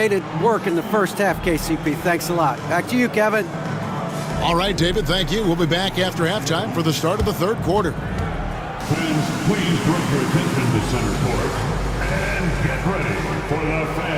it work in the first half, KCP. Thanks a lot. Back to you, Kevin. All right, David, thank you. We'll be back after halftime for the start of the third quarter. Fans, please direct your attention to center court. And get ready for the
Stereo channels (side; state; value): both; identical; correlation 1.00